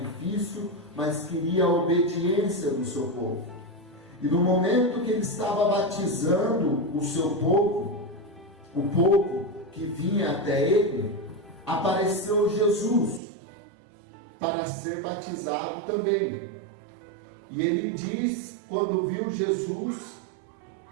mas queria a obediência do seu povo. E no momento que ele estava batizando o seu povo, o povo que vinha até ele, apareceu Jesus para ser batizado também. E ele diz, quando viu Jesus:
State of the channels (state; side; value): drops out; left; at 13.2 s